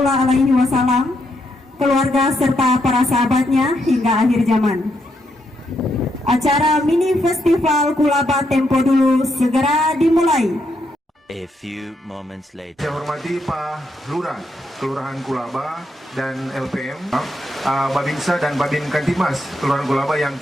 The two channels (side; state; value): both; normal; correlation 0.79